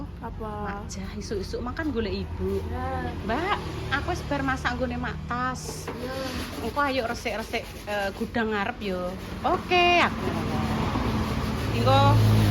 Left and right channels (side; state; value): both; identical; correlation 1.00